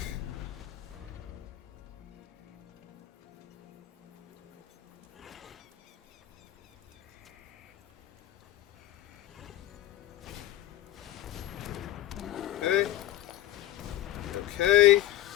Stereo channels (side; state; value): right; quieter; 14.2 dB